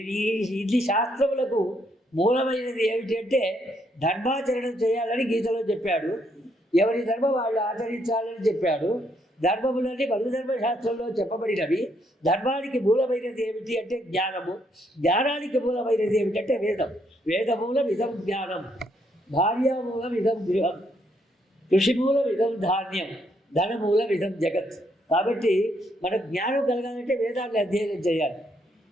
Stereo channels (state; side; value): normal; both; correlation 0.73